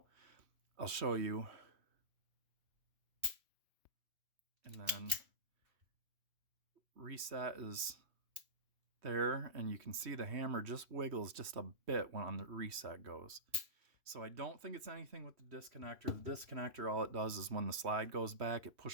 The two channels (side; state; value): left; late; 3.1 ms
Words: I'll show you. And then reset is there, and you can see the hammer just wiggles just a bit when on the reset goes. So I don't think it's anything with the disconnector. The disconnector, all it does is when the slide goes back, it